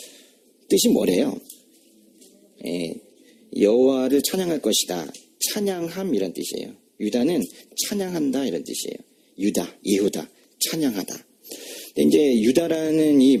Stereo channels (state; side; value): identical; both; correlation 1.00